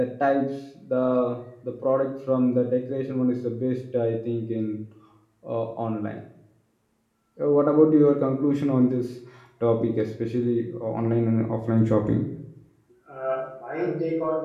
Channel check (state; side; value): identical; both; correlation 1.00